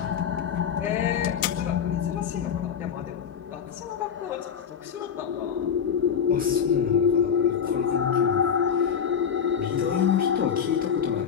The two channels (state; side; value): quieter; right; 7.6 dB